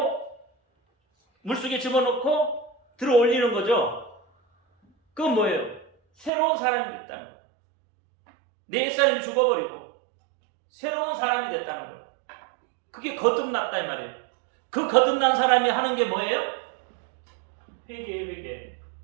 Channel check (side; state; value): left; drops out; at 6.3 s